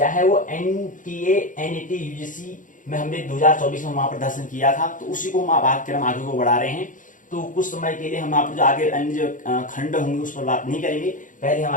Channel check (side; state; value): right; late; 0.38 ms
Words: है वो एनटीए, एनईटी, यूजीसी में हमने 2024 में वहां पर दर्शन किया था, तो उसी को हम पाठ्यक्रम आगे को बढ़ा रहे हैं। तो कुछ समय के लिए हम आप जो आगे अन्य जो खंड होंगे उस पर बात नहीं करेंगे। पहले हम